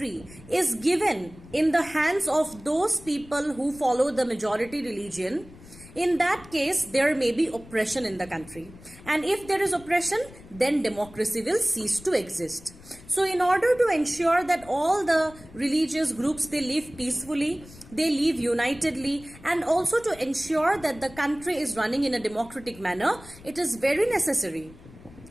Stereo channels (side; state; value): left; noise; rumble, 20 dB below the sound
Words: is given in the hands of those people who follow the majority religion, in that case, there may be oppression in the country. And if there is oppression, then democracy will cease to exist. So in order to ensure that all the religious groups, they live peacefully, they live unitedly, and also to ensure that the country is running in a democratic manner, it is very necessary